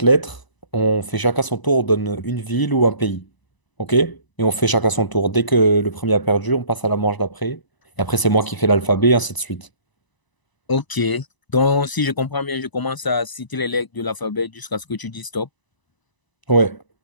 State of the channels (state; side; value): late; right; 1.0 ms